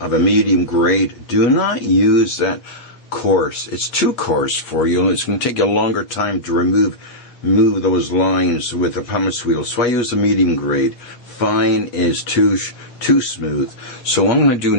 a medium grade, do not use that coarse. It's too coarse for you, and it's going to take you a longer time to remove those lines with the pumice wheel. So I use the medium grade. Fine is too smooth. So what I'm going to do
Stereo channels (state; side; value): late; right; 8.3 ms